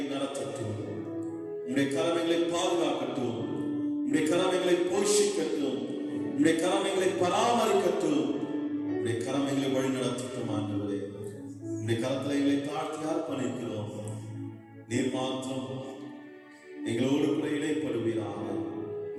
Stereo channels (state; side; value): identical; both; correlation 1.00